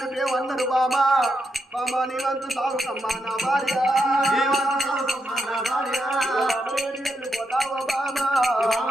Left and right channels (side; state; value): both; normal; correlation 0.82